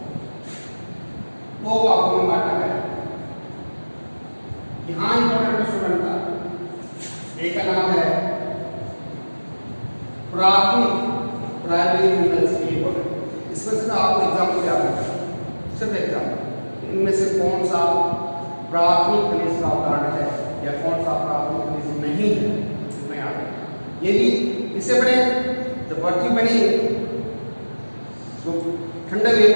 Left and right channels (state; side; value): inverted; both; correlation -1.00